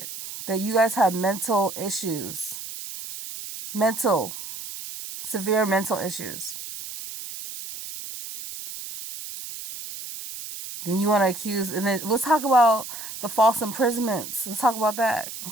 That you guys have mental issues. Mental, severe mental issues. Then you want to accuse, and then let's talk about the false imprisonments. Let's talk about that.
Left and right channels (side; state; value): right; noise; hiss, 10 dB below the sound